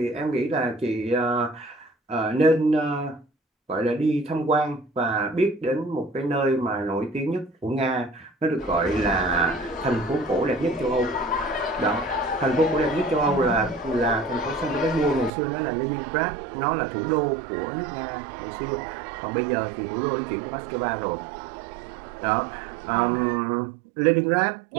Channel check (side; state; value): left; drops out; at 15.3 s